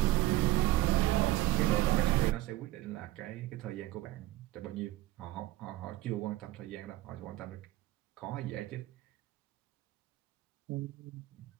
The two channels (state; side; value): quieter; left; 16.3 dB